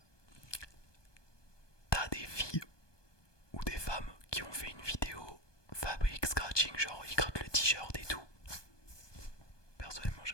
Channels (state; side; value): late; right; 1.2 ms